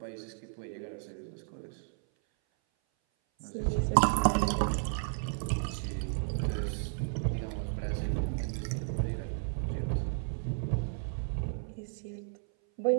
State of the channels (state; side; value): silent; left; 56 dB below the other